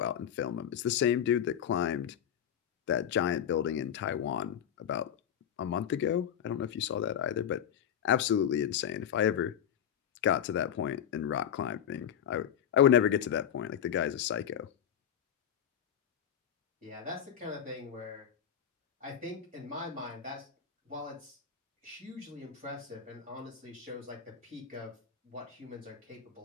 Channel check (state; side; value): quieter; right; 9.3 dB